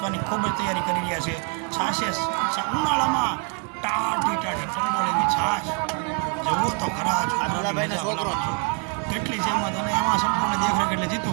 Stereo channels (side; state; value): left; quieter; 39.2 dB